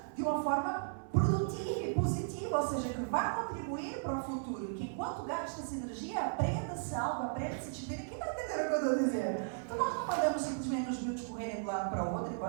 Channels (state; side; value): silent; left; 54 dB below the other